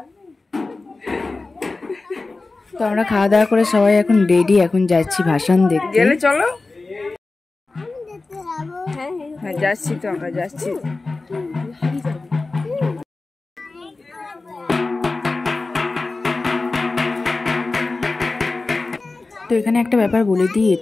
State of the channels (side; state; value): right; quieter; 3.5 dB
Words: তো আমরা খাওয়া দাওয়া করে সবাই এখন রেডি, এখন যাচ্ছি ভাসান দেখতে। গেলে চলো। হ্যাঁ যাচ্ছি, তো আমরা যাচ্ছি। তো এখানে একটা ব্যাপার বলে দিই,